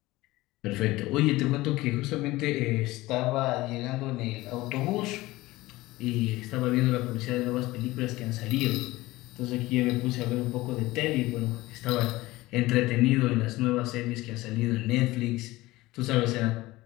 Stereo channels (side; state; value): right; quieter; 19.0 dB